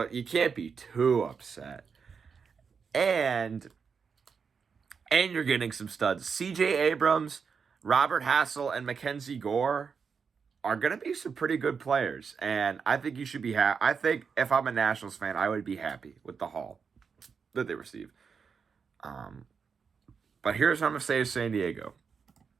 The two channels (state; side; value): quieter; left; 5.9 dB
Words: you can't be too upset. And you're getting some studs. C.J. Abrams, Robert Hassel, and Mackenzie Gore are going to be some pretty good players. And I think you should be happy. I think if I'm a Nationals fan, I would be happy with the haul that they receive. But here's what I'm going to say to San Diego.